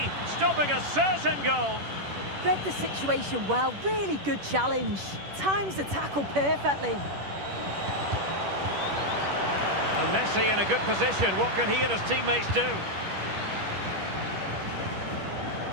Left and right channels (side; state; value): left; late; 10 ms